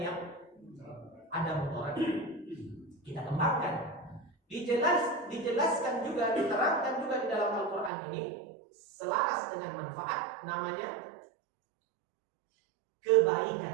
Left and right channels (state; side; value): drops out; left; at 7.9 s